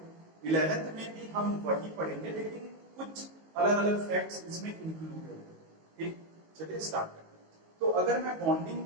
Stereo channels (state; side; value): late; left; 19 ms